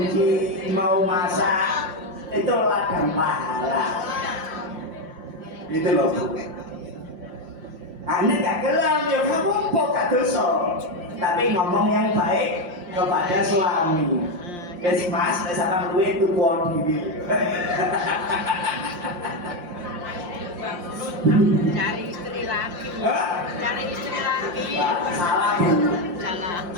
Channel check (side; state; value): left; late; 5.7 ms